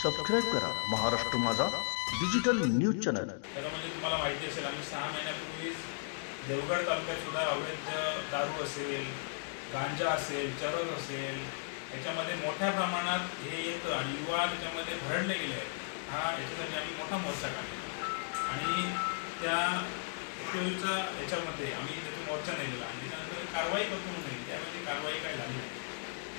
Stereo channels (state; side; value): silent; right; digital silence